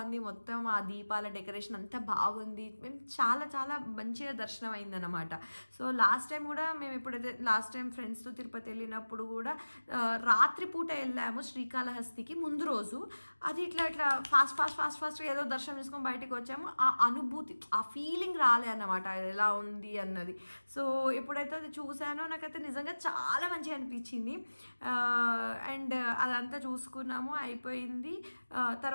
ఉంది. మొత్తం ఆ దీపాల డెకరేషన్ అంతా బాగుంది. మేము చాలా మంచిగా దర్శనం అయిందన్నమాట. సో లాస్ట్ టైం కూడా మేము ఎప్పుడైతే ఫ్రెండ్స్తో తిరుపతి వెళ్ళినప్పుడు కూడా రాత్రిపూట వెళ్ళాము శ్రీకాళహస్తికి. ముందు రోజు అది ఇట్లా ఫాస్ట్ ఏదో దర్శనం చేసుకొని బయటకు వచ్చాము. ఆ అనుభూతి, ఆ ఫీలింగ్ రాలే అన్నమాట, ఎలా ఉంది అన్నది. సో ఎప్పుడైతే అది చూసానో నాకైతే నిజంగా చాలా మంచిగా అనిపించింది. అండ్ అదంతా చూసుకున్నాము, అయిపోయింది.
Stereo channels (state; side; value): inverted; both; correlation -1.00